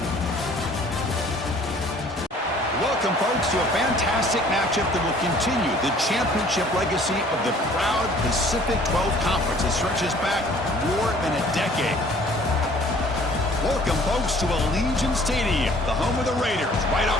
Welcome, folks, to a fantastic matchup that will continue the championship legacy of the proud Pacific 12 Conference that stretches back more than a decade. Welcome, folks, to Allegiant Stadium, the home of the Raiders, right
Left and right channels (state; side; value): normal; both; correlation 0.54